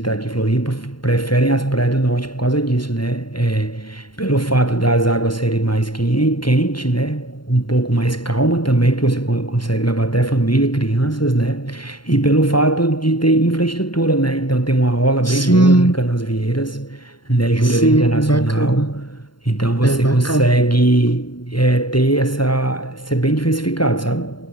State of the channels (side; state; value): right; late; 0.72 ms